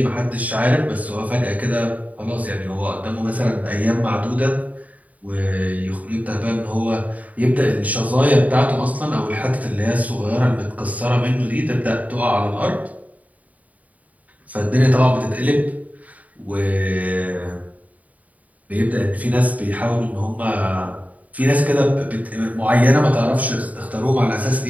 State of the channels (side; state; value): left; late; 0.071 ms